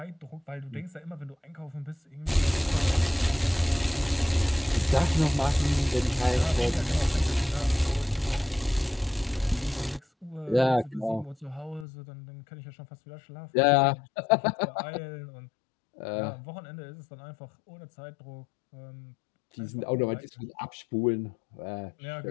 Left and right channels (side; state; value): right; drops out; at 11.9 s